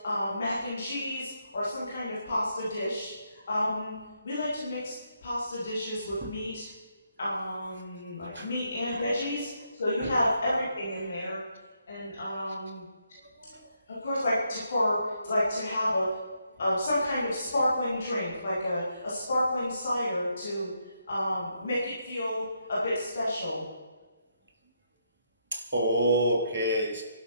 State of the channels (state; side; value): inverted; both; correlation -0.78